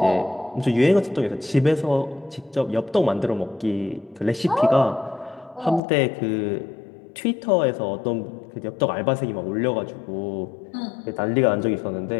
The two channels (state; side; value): drops out; right; at 5.8 s